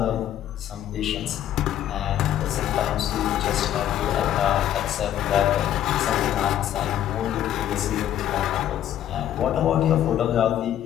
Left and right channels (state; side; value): quieter; right; 11.4 dB